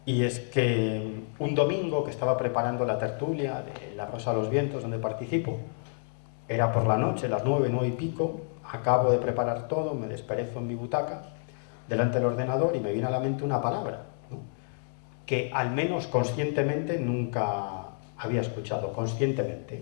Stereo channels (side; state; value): right; silent; 58 dB below the other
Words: y es que un domingo que estaba preparando la tertulia de La Rosa de los Vientos, donde participo, era por la noche, las 9, 9 y pico, acabo de preparar todo, me desperezo en mi butaca, delante del ordenador, y me viene a la mente una palabra, ¿no? Que al menos conscientemente nunca había escuchado,